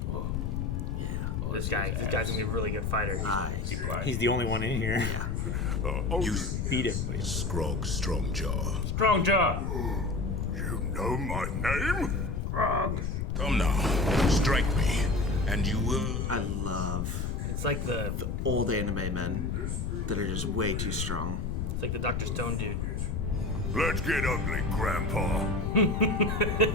Yeah. This guy's gonna be a really good fighter. Eyes. He's the only one in here. You Beat everybody. Scrog Strongjaw. Strong jaw. You know my name? Grog. Come now, strike me, and you will. I love It's like the old anime men that are just way too strong. Dr. Stone dude. Let's get ugly, Grandpa.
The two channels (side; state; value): left; noise; rumble, 1 dB below the sound